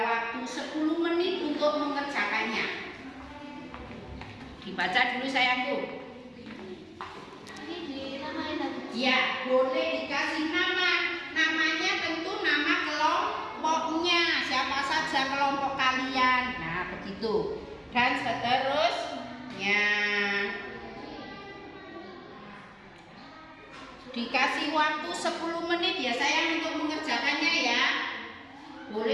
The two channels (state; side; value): identical; both; correlation 1.00